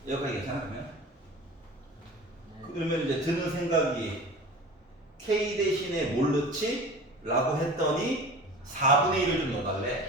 여기까지 괜찮아 그러면? 그러면 이제 드는 생각이 K 대신에 뭘 넣지? 라고 했더니 4분의 1을 좀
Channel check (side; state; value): both; normal; correlation 0.38